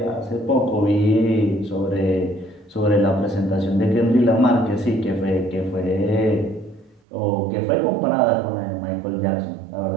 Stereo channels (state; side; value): drops out; left; at 7.0 s